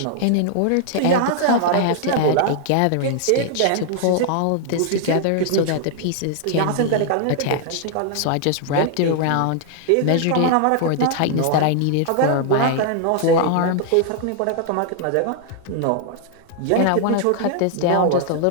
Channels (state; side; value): different; both; correlation 0.00